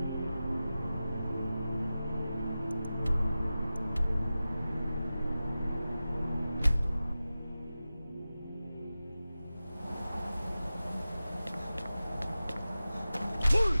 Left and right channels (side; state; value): both; inverted; correlation -0.95